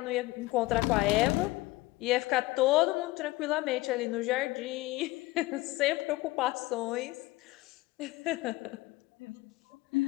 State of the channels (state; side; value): quieter; right; 19.9 dB